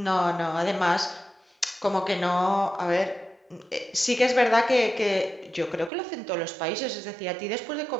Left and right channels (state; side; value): drops out; left; at 5.9 s